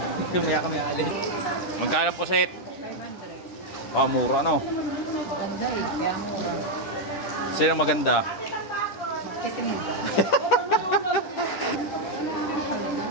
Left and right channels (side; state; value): right; late; 10 ms